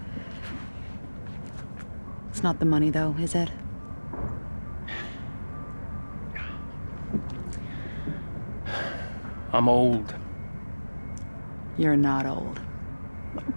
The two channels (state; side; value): inverted; both; correlation -1.00